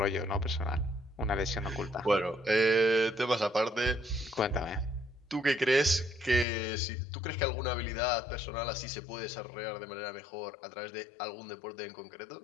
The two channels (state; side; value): drops out; right; at 6.5 s